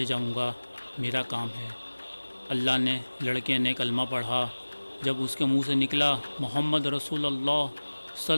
جاؤں گا، میرا کام ہے۔ اللہ نے لڑکے نے کلمہ پڑھا۔ جب اس کے منہ سے نکلا محمد رسول اللہ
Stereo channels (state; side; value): inverted; both; correlation -1.00